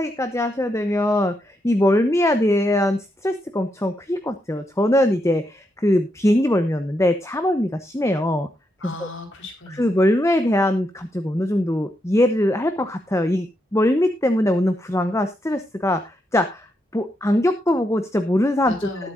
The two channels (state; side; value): normal; both; correlation 0.81